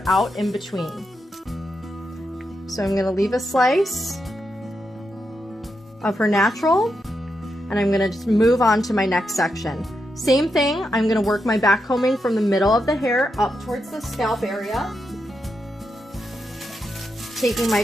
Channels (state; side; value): normal; both; correlation 0.85